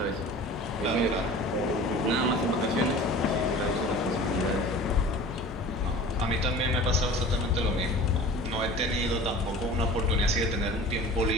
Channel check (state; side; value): normal; both; correlation 0.40